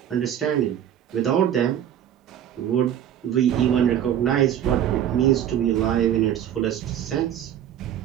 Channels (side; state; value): left; quieter; 10.3 dB